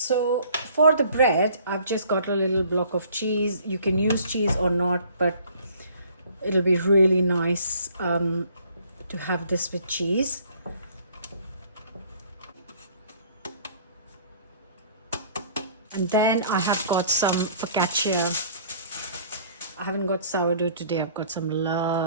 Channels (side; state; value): both; inverted; correlation -0.56